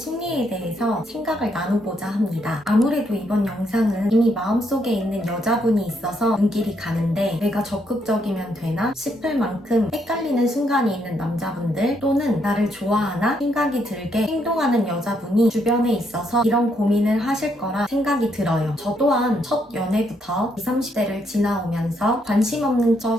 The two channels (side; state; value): both; normal; correlation 0.75